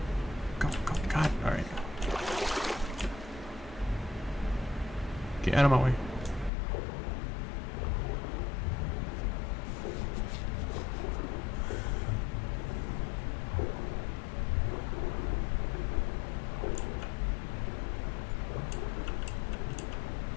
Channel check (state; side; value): drops out; right; at 6.5 s